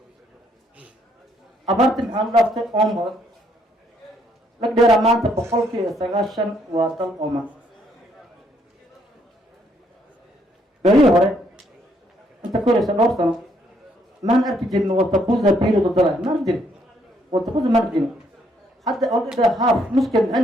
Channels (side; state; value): both; normal; correlation 0.70